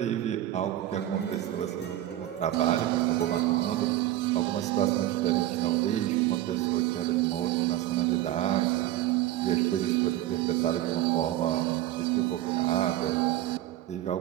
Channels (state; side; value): quieter; left; 13.9 dB